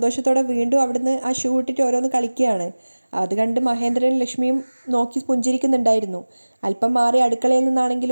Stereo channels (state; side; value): inverted; both; correlation -1.00